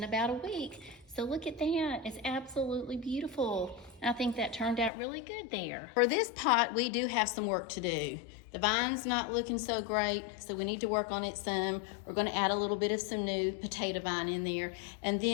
about a week. So look at that, it's absolutely beautiful. I think that turned out really good there. For this pot, we do have some work to do. The vine's not looking so great, so we need to work on it some. We're gonna add a little bit of some new potato vine in there. And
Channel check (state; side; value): drops out; right; at 4.9 s